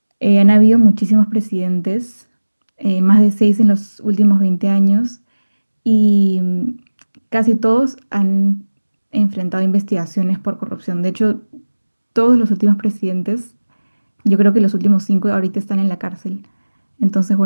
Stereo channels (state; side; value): inverted; both; correlation -1.00